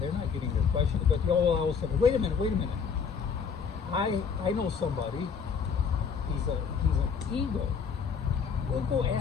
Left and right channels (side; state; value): right; quieter; 6.2 dB